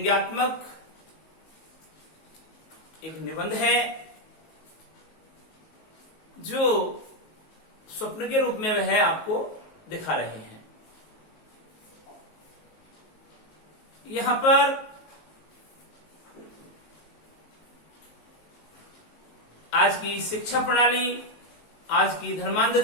एक निबंध है जो स्वप्न के रूप में वह आपको दिखा रहे हैं। यहां पर आज की शिक्षा प्रणाली, आज की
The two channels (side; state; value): right; late; 19 ms